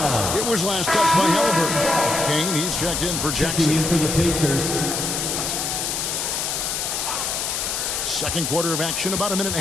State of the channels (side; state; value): left; noise; hiss, 1 dB below the sound